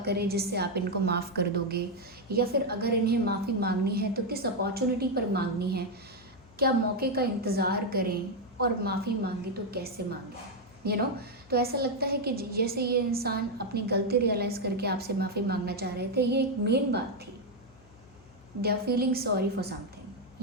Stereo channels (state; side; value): noise; left; hum, 26 dB below the sound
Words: करें जिससे आप इनको माफ़ कर दोगे, या फिर अगर इन्हें माफ़ी मांगनी है तो किस अपॉर्चुनिटी पर मांगनी है, क्या मौके का इंतज़ार करें, और माफ़ी मांगे तो कैसे मांगे। तो ऐसा लगता है कि जैसे ये इंसान अपनी गलती रियलाइज़ करके आपसे माफ़ी मांगना चाह रहे थे। ये एक मेन बात थी, they are feeling sorry for